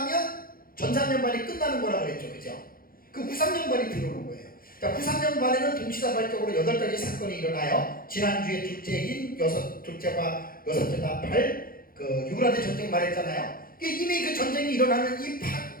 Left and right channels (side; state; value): right; late; 0.42 ms